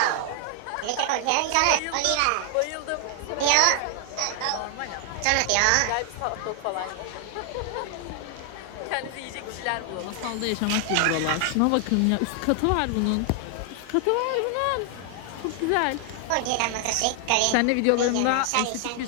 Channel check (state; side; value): different; both; correlation 0.00